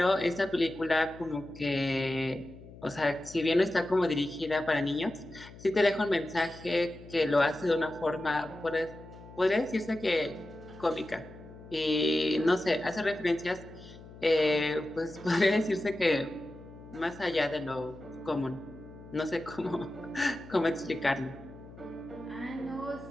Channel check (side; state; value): left; noise; hum, 18 dB below the sound